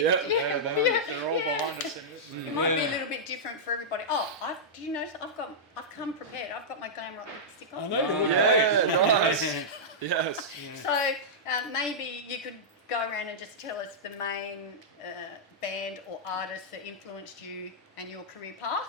They're all behind us. It might be a little bit different for everybody. Oh, do you know? I've come prepared. I've got my glam rock lipstick on. I know. Nice. Yes. So maybe you could go around and just tell us the main band or artist that influenced you and your career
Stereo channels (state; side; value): normal; both; correlation -0.11